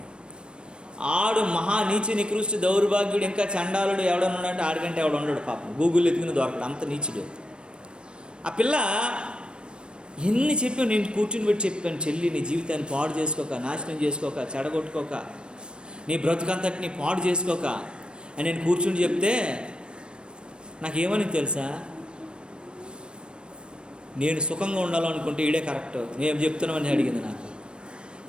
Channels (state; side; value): late; left; 0.054 ms